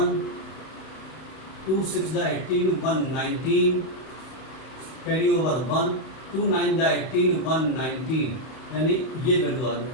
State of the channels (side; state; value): right; late; 31 ms